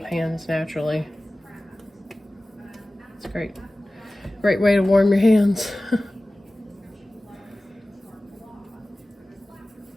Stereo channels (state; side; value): normal; both; correlation 0.97